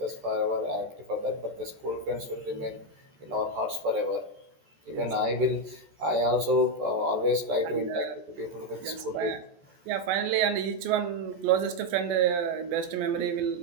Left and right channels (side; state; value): left; late; 14 ms